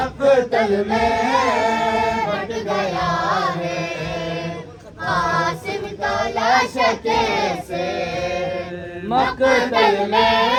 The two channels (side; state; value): both; identical; correlation 1.00